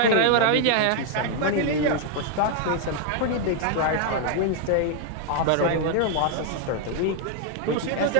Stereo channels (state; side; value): different; both; correlation 0.00